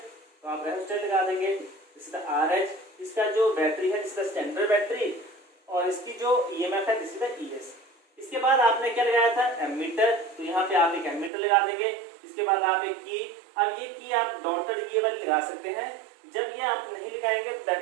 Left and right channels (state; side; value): drops out; left; at 11.3 s